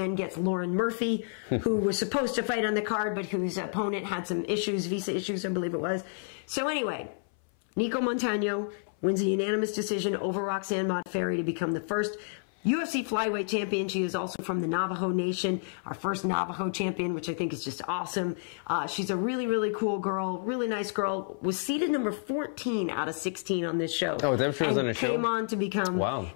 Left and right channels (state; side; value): silent; right; 58 dB below the other